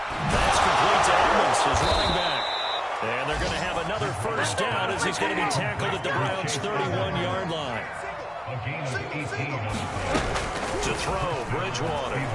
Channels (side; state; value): both; identical; correlation 1.00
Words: That's complete to Evans, his running back. And they're going to have another 1st down as he's going to be tackled at the Browns' 31-yard line. To throw, Bridgewater.